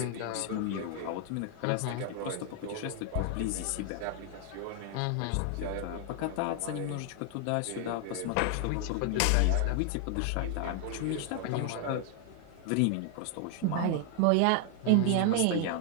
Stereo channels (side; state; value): both; different; correlation 0.00